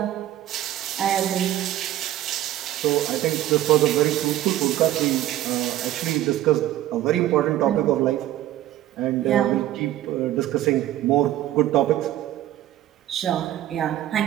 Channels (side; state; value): left; quieter; 13.4 dB